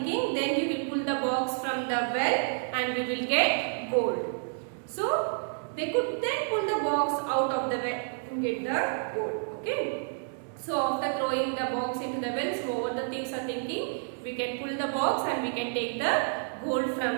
then we will pull the box from the well and we will get gold. So they could then pull the box out of the well and get the gold. Okay. So after throwing the box into the well, so what the thieves are thinking, we can pull the box and we can take the gold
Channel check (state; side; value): silent; left; digital silence